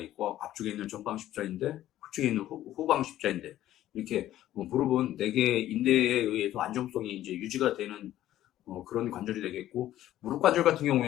앞쪽에 있는 전방 십자인대, 후측에 있는 후방 십자인대, 이렇게 무릎은 4개의 인대에 의해서 안정성이 이제 유지가 되는 그런 관절이 되겠고, 무릎 관절 같은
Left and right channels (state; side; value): quieter; right; 13.4 dB